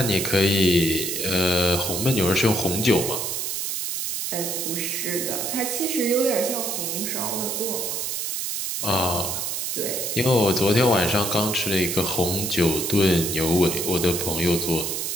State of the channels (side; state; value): right; noise; hiss, 2 dB below the sound